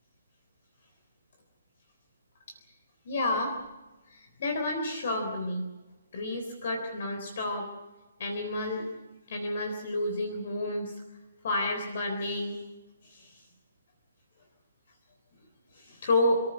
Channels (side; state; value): both; inverted; correlation -0.66